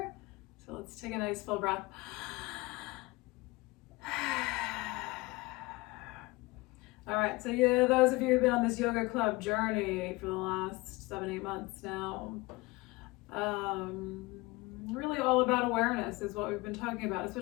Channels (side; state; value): right; quieter; 22.8 dB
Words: So let's take a nice full breath. All right, so those of you who've been on this yoga club journey for the last 7-8 months now, really all about awareness is what we've been talking about,